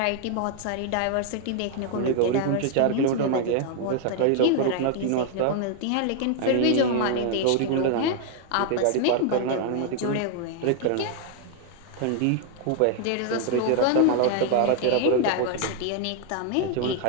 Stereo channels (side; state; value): both; different; correlation 0.00